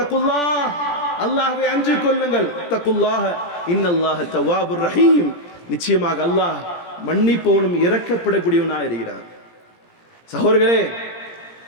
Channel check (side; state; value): right; late; 17 ms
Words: அல்லாஹ்வை அஞ்சிக் கொள்ளுங்கள். தக்குல்லாஹ இன்னல்லாஹ தவ்வாபுர் ரஹீம். நிச்சயமாக அல்லாஹ் மன்னிப்பவனும் இரக்கப்படக்கூடியவனாக இருக்கிறார். சகோதரர்களே,